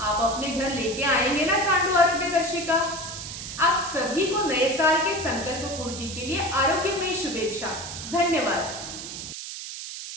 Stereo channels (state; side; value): noise; right; hiss, 9 dB below the sound